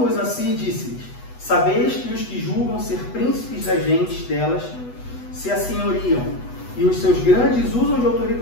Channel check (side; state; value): right; late; 8.1 ms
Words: a si, disse-lhes: sabeis que os que julgam ser príncipes das gentes delas se assenhoriam, e os seus grandes usam de